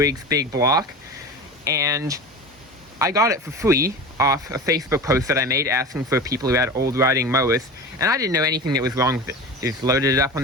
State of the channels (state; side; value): normal; both; correlation 0.30